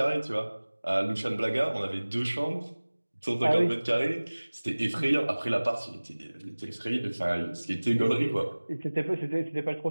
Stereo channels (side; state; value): both; inverted; correlation -1.00